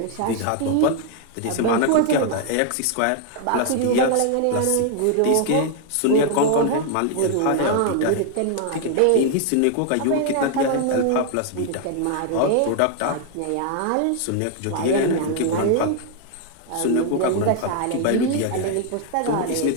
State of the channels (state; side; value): different; both; correlation 0.00